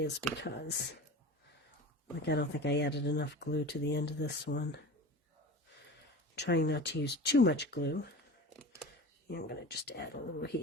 because, I don't think I added enough glue to the end of this one. I'm trying not to use too much glue. I'm going to just add a little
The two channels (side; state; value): both; normal; correlation 0.34